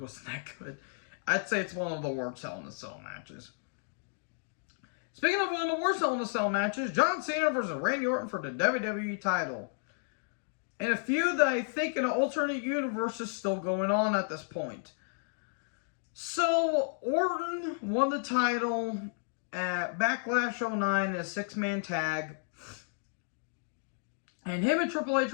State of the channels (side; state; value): right; silent; digital silence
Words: that good. I'd say it's one of the worst Hell in a Cell matches. Speaking of one of the worst Hell in a Cell matches, John Cena versus Randy Orton for the WWE title. And a feud that I think in an alternate universe is still going on at this point. So, Orton won the title at Backlash 09 in a 6-man tag. And him and Triple H